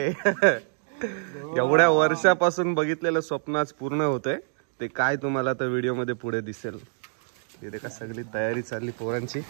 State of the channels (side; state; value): left; silent; digital silence